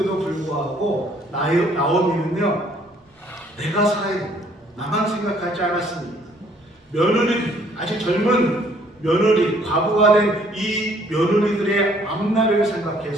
불구하고 나오미는요 내가 살아야 된다, 나만 생각하지 않았습니다. 며느리, 아직 젊은 며느리, 과부가 된 이 며느리들의 앞날을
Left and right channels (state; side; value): normal; both; correlation 0.62